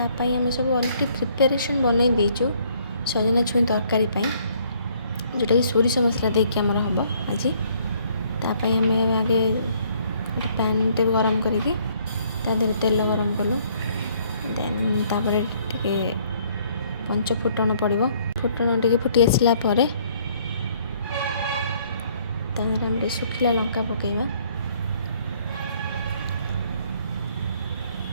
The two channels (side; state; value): both; inverted; correlation -0.64